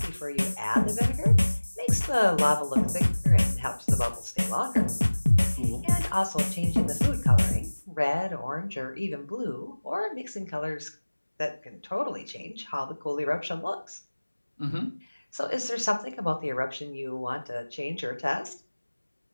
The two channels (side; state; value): both; inverted; correlation -1.00